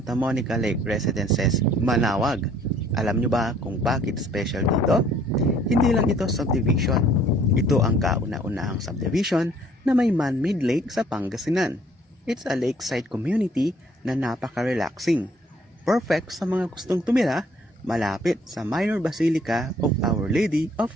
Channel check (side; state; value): both; normal; correlation 0.59